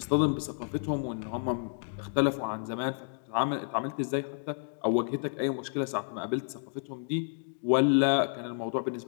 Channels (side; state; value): right; silent; digital silence